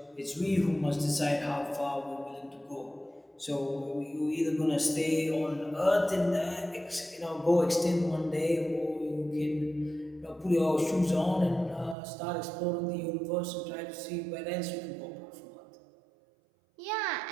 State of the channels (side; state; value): left; drops out; at 12.0 s